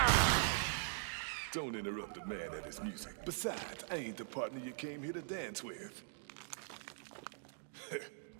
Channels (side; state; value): left; silent; digital silence